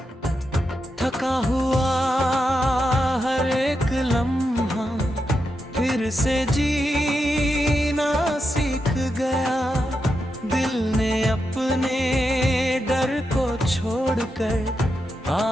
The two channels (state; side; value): normal; both; correlation 0.86